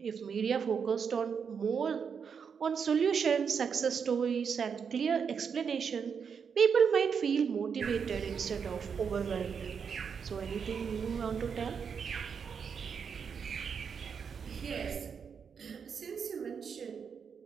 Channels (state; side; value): quieter; left; 6.5 dB